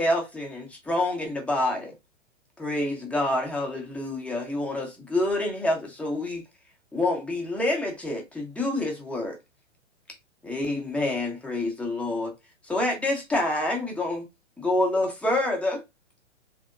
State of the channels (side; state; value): both; normal; correlation 0.71